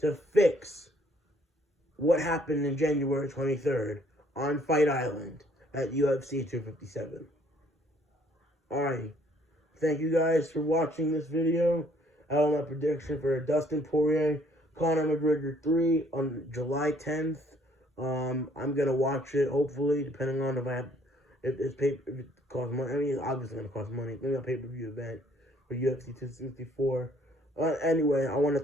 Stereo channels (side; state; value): both; normal; correlation 0.63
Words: to fix what happened in January 23rd on Fight Island at UFC 257. Alright, thank you guys for watching this video. I have my prediction for Dustin Poirier, Conor McGregor 3 on July 10th. I'm gonna watch it, hopefully, depending on if it costs money. I mean, it's obviously gonna cost money. Maybe a pay-per-view event for UFC 264. Anyway, I want to